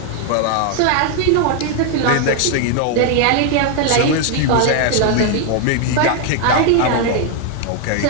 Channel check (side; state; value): both; different; correlation 0.00